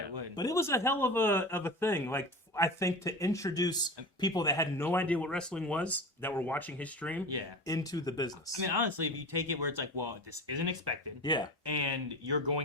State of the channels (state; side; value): normal; both; correlation 0.30